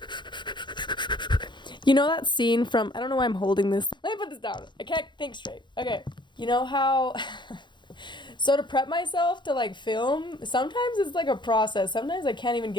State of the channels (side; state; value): right; late; 0.22 ms